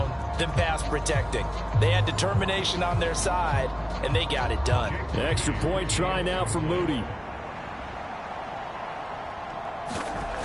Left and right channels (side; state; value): both; identical; correlation 1.00